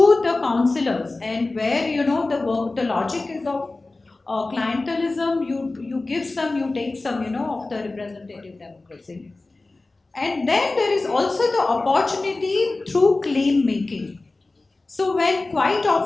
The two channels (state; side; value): quieter; right; 3.2 dB